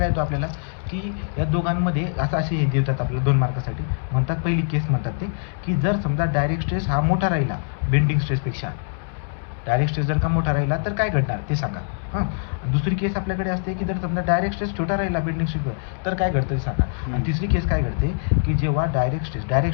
येतो आपल्याला की या दोघांमध्ये असे हे देतात आपल्याला 2 मार्कासाठी. म्हणतात पहिली केस म्हणतात ते की जर समजा डायरेक्ट स्ट्रेस हा मोठा राहिला बेंडिंग स्ट्रेसपेक्षा, डायरेक्ट स्ट्रेस जर का मोठा राहिला तर काय घडणार ते सांगा. दुसरी केस आपल्याकडे असते की जर समजा डायरेक्ट स्ट्रेस छोटा राहिला बेंडिंग स्ट्रेसवर तर काय घडतं ते सांगा. आणि तिसरी केस काय घडते की जेव्हा डायरेक्ट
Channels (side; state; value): right; silent; digital silence